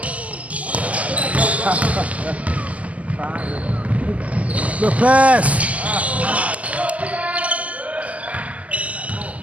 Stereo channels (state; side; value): late; left; 0.065 ms